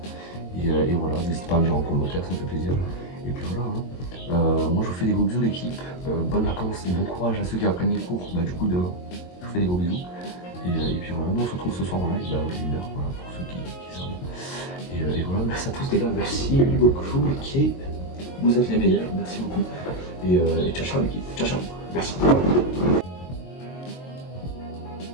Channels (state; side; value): late; right; 22 ms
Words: Et voilà, n'hésitez pas à me dire en commentaire, ça me fait plaisir. Et puis voilà, hein. Moi je vous fais des gros bisous l'équipe, bonnes vacances et bon courage à ceux qui apprennent les cours, bah du coup demain, je vous fais des gros bisous. Et puis voilà, nous on se retrouve ce soir en live, à 1h, voilà, pour ceux qui savent. Et voilà, merci à tous les gars, merci beaucoup l'équipe, vous êtes les meilleurs, merci beaucoup. Et ciao ciao l'équipe, ciao ciao, merci.